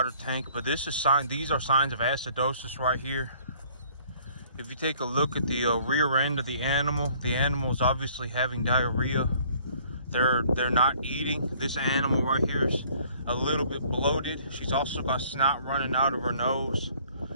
tank, but these are signs of acidosis right here. If you take a look at the rear end of the animal is obviously having diarrhea. They're not eating. This animal right here is a little bit bloated. She's also got snot running out of her nose.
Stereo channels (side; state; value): both; inverted; correlation -0.57